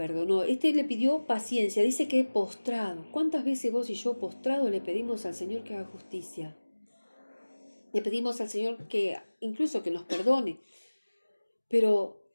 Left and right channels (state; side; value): inverted; both; correlation -1.00